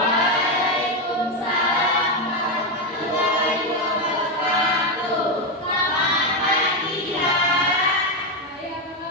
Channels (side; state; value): both; normal; correlation 0.08